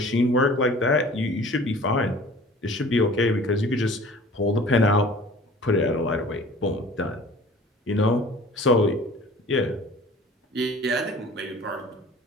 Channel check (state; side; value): normal; both; correlation 0.46